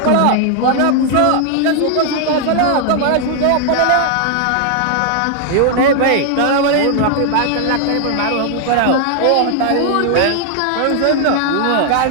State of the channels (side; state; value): both; different; correlation 0.00